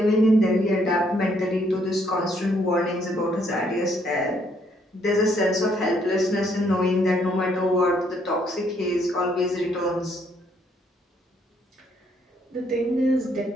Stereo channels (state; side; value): normal; both; correlation 0.69